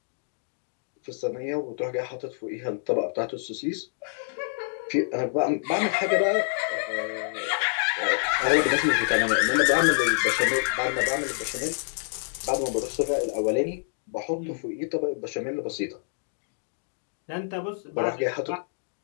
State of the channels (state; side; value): silent; right; digital silence